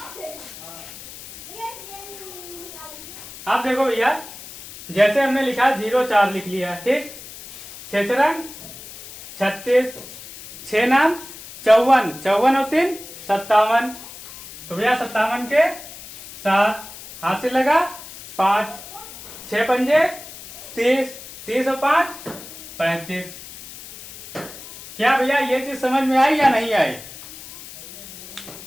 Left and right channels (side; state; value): left; noise; hiss, 15 dB below the sound